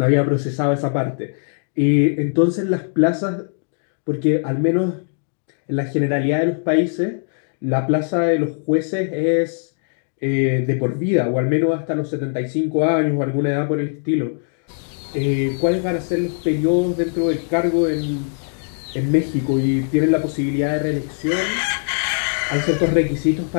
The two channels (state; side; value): silent; right; digital silence